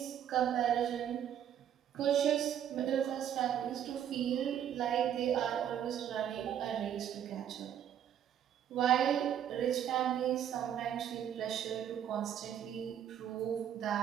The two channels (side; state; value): left; quieter; 9.8 dB